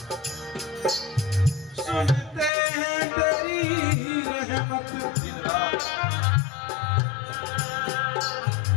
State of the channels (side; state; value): right; drops out; at 2.5 s